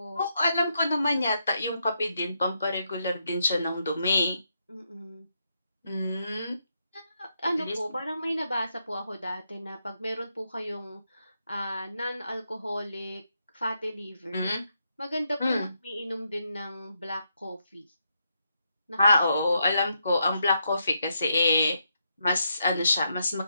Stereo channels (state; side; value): inverted; both; correlation -0.80